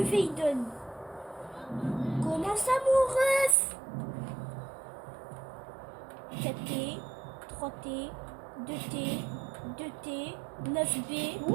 il donne. Comment ça mon ref? 4T, 3T, 2T, 2T, 9B.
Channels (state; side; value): drops out; left; at 3.6 s